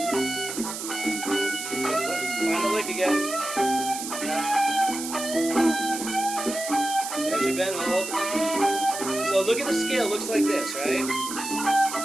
the lick again. There's your bend hold. So look at the scale, looks like this, right?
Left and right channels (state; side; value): noise; right; hiss, 7 dB below the sound